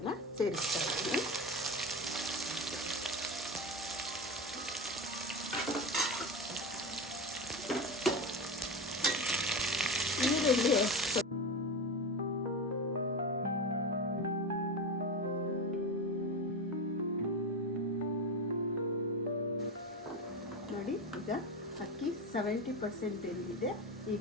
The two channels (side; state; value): both; normal; correlation 0.22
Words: ಸೇರಿಸ್ತಾ ಇದ್ದೀನಿ. ಈರುಳ್ಳಿ ನೋಡಿ, ಈಗ ಅಕ್ಕಿ 70% ಬೆಂದಿದೆ.